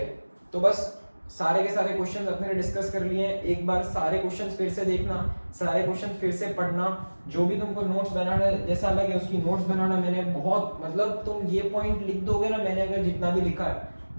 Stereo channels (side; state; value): both; inverted; correlation -1.00